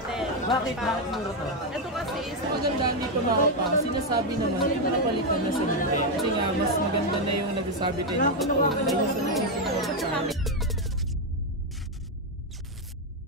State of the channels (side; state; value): both; normal; correlation 0.04